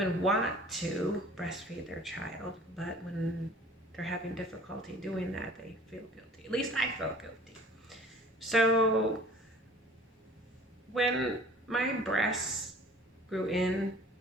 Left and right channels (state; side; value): normal; both; correlation 0.48